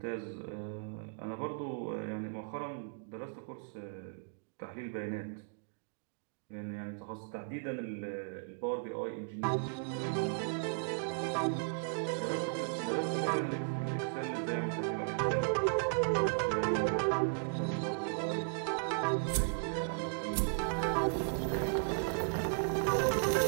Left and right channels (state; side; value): silent; left; digital silence